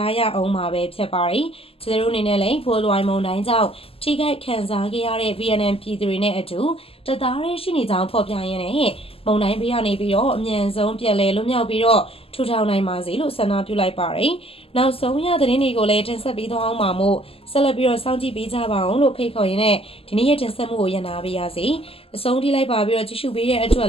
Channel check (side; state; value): right; late; 0.28 ms